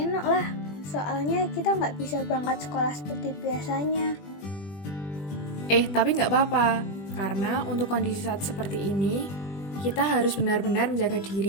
lah, soalnya kita nggak bisa berangkat sekolah seperti biasanya. Tapi nggak apa-apa, karena untuk kondisi saat seperti ini, kita harus benar-benar menjaga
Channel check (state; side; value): late; right; 20 ms